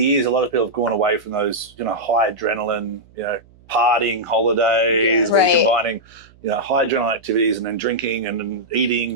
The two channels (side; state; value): right; noise; hum, 28 dB below the sound